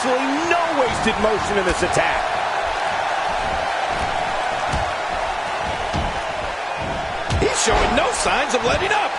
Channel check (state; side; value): identical; both; correlation 1.00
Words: no wasted motion in this attack. He's showing no signs of letting up.